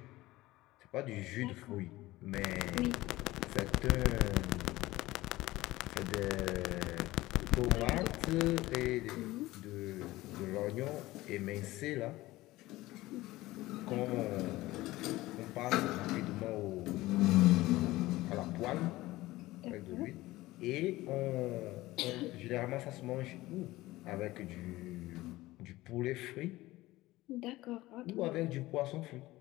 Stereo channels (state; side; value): quieter; right; 18.1 dB